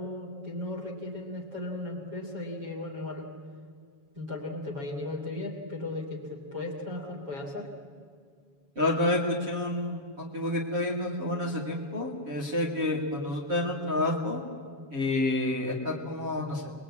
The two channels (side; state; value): left; late; 7.2 ms